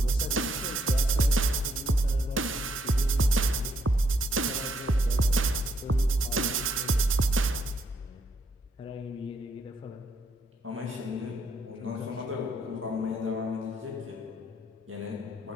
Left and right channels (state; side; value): normal; both; correlation 0.73